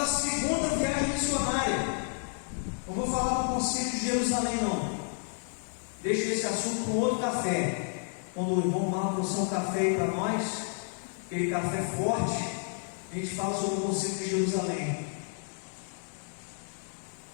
segunda viagem missionária. Não vou falar do Concílio de Jerusalém, não. Deixa esse assunto com outro café. Quando o irmão Marco trouxer um café aí para nós, aquele café forte, a gente fala sobre o Concílio de Jerusalém.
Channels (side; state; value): right; silent; 57 dB below the other